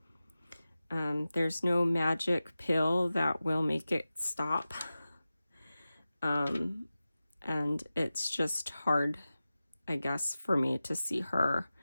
There's no magic pill that will make it stop. And it's just hard, I guess, for me to see her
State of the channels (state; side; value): inverted; both; correlation -0.95